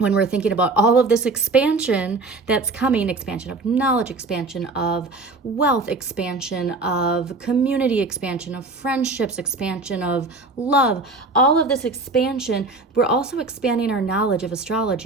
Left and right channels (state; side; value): quieter; left; 3.5 dB